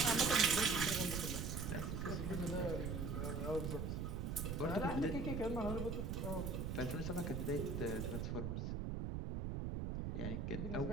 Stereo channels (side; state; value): right; noise; rumble, 2 dB below the sound